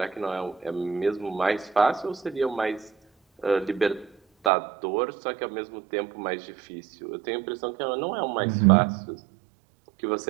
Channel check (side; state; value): left; drops out; at 4.5 s